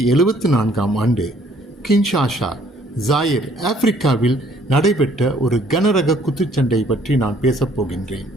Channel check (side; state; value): both; normal; correlation 0.61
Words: ஆண்டு கின்ஷாசா ஜாயிர் ஆப்பிரிக்காவில் நடைபெற்ற ஒரு கனரக குத்துச்சண்டை பற்றி நான் பேசப் போகின்றேன்.